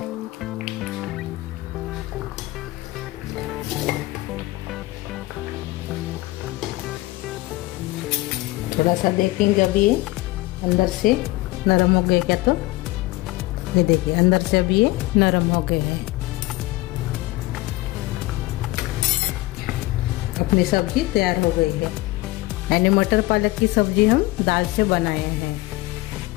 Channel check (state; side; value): quieter; right; 19.4 dB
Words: थोड़ा सा देखेंगे अभी ये अंदर से नरम हो गए क्या, तो ये देखिए अंदर से अभी ये नरम हो गए हैं। अपनी सब्जी तैयार हो गई है। यानी मटर पालक की सब्जी हम दाल से बनाए हैं।